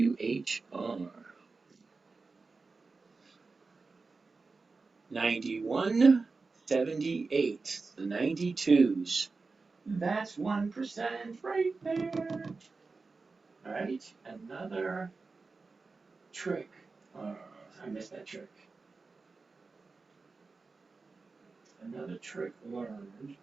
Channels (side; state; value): left; quieter; 4.1 dB